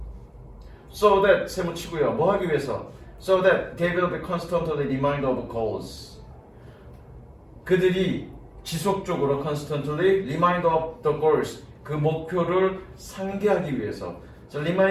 So that 세모 치고요. 뭐 하기 위해서? So that they will be constantly reminded of goals. 그들이 지속적으로 constantly remind of the goals. 그 목표를 상기하기 위해서. 자,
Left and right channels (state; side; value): identical; both; correlation 1.00